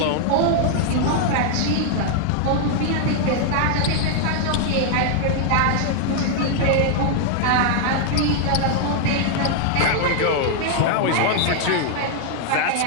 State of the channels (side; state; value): both; different; correlation 0.00